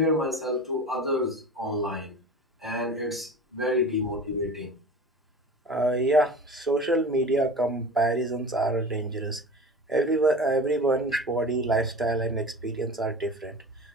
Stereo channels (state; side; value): normal; both; correlation 0.35